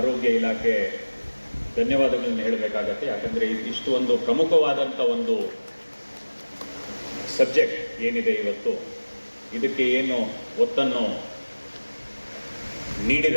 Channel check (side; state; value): both; inverted; correlation -1.00